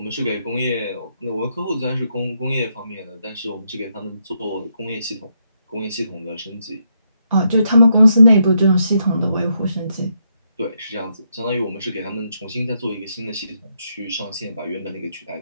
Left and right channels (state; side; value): inverted; both; correlation -0.79